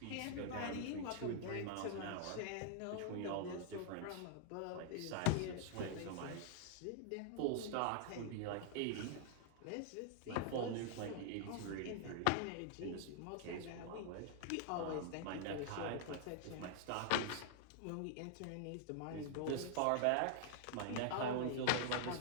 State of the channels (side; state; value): both; different; correlation -0.01